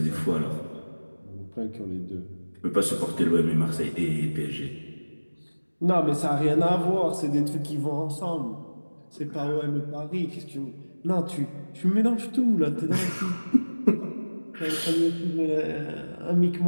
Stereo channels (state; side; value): inverted; both; correlation -1.00